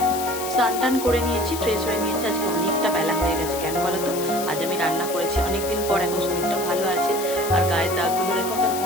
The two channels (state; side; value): noise; left; hiss, 8 dB below the sound